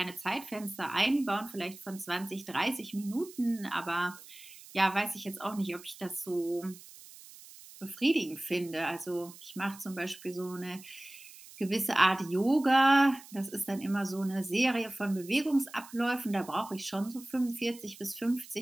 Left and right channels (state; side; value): noise; right; hiss, 18 dB below the sound